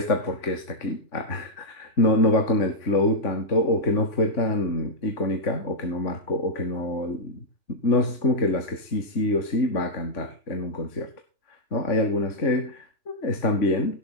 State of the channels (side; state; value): right; late; 3.5 ms